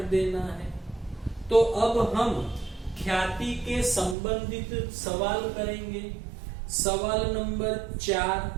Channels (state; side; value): drops out; left; at 4.2 s